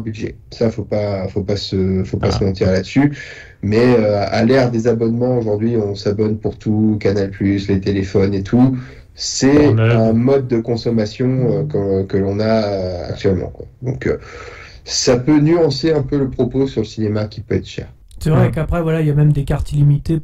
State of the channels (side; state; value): both; identical; correlation 1.00